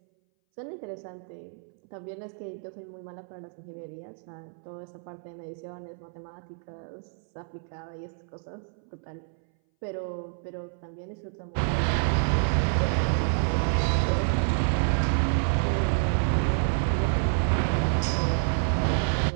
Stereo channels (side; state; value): left; silent; 59 dB below the other